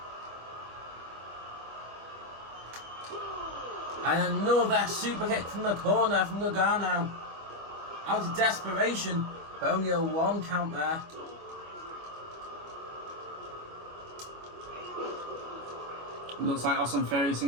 And another super kick from the corner from Gargano. Out of desperation, but only a 1 count there. Looks like Austin Theory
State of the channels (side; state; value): left; late; 25 ms